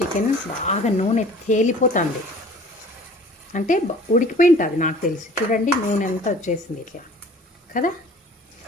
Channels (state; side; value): normal; both; correlation 0.48